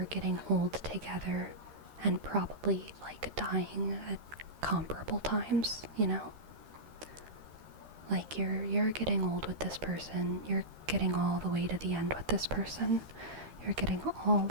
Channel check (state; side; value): late; left; 13 ms